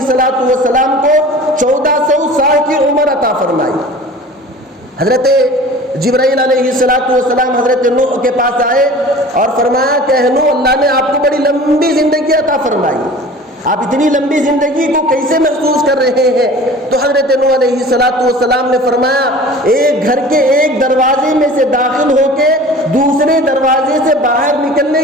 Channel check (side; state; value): both; normal; correlation 0.41